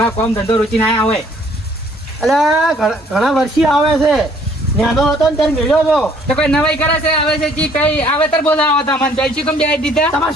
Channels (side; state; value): both; normal; correlation 0.60